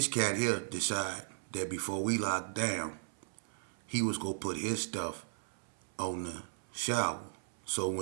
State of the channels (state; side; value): silent; left; 54 dB below the other